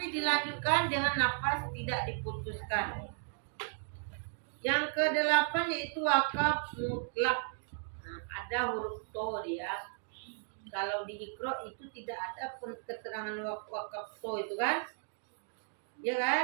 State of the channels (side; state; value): left; silent; 54 dB below the other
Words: dilanjutkan dengan nafas tidak diputuskan. Yang ke-8 yaitu wakaf mutlak. Ada huruf to dia. Kalau di Iqra itu tidak ada keterangan wakaf to itu kan? Ya